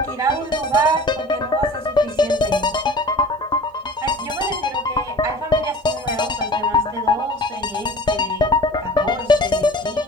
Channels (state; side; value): normal; both; correlation 0.42